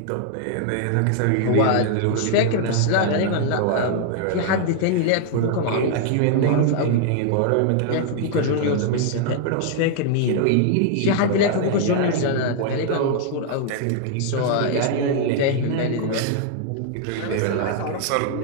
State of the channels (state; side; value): different; both; correlation 0.00